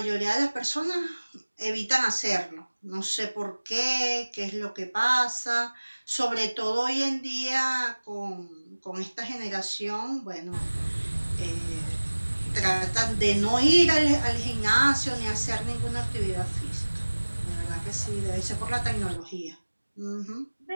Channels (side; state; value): both; inverted; correlation -1.00